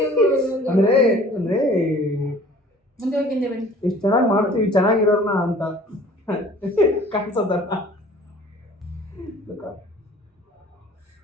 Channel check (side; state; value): both; normal; correlation 0.49